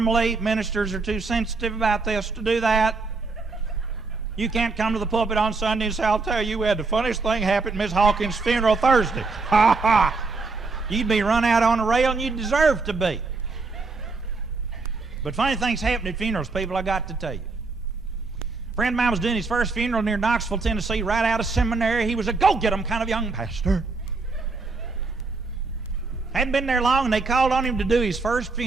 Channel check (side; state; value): left; quieter; 3.9 dB